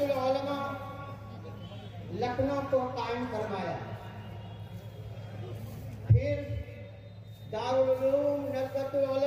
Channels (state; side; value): identical; both; correlation 1.00